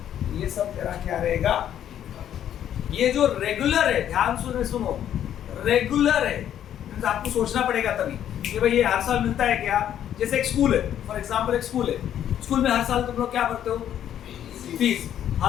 ये सब तेरा क्या रहेगा। ये जो रेगुलर है, ध्यान सुनो, रेगुलर है, आपको सोचना पड़ेगा तभी कि भाई ये हर साल मिलता है क्या। जैसे एक स्कूल है, फॉर एग्जांपल एक स्कूल है, स्कूल में हर साल तुम लोग क्या भरते हो, फीस,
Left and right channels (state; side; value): quieter; right; 10.4 dB